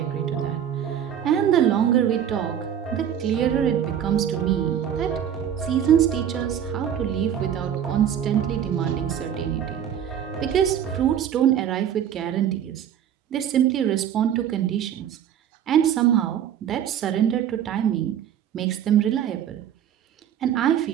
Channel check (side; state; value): left; quieter; 9.5 dB